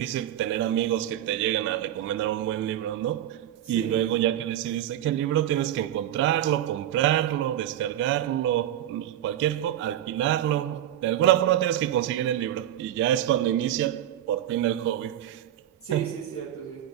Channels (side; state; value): left; quieter; 12.0 dB